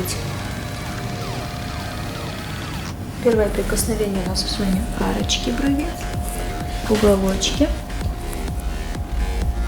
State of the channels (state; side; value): identical; both; correlation 1.00